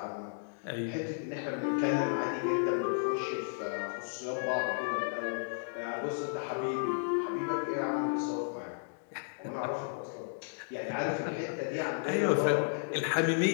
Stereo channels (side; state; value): right; silent; digital silence